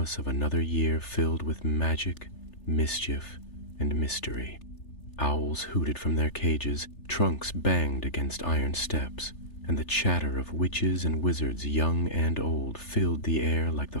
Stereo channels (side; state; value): right; late; 3.4 ms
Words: of another year filled with magic, mischief, and mystery. Owls hooted from their cages, trunks banged against iron steps, and the chatter of witches and wizards young and old filled the air like the